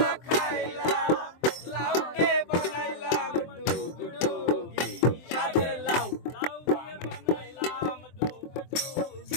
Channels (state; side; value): late; right; 23 ms